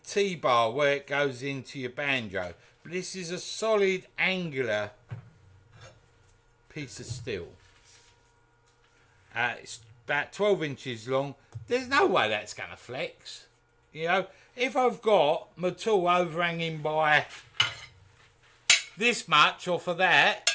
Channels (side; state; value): both; identical; correlation 1.00